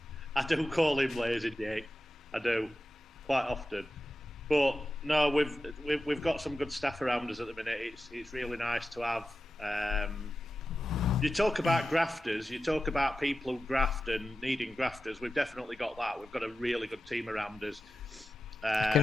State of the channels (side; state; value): both; normal; correlation 0.92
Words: I do call him Lazy Jake. I do, quite often. But no, we've got some good staff around us at the minute. It's really nice to have. You talk about grafters. You talk about people who graft and needing grafters. We've definitely got that. We've got a really good team around us. I